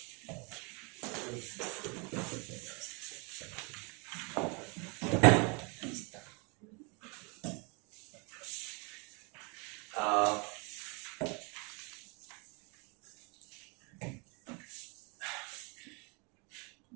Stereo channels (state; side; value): quieter; left; 31.8 dB